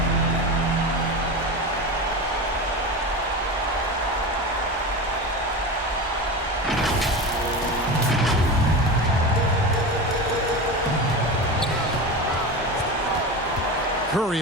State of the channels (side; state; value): both; normal; correlation 0.25